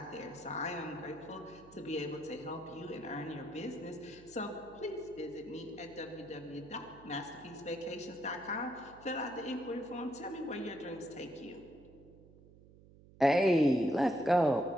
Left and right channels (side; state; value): right; noise; hum, 22 dB below the sound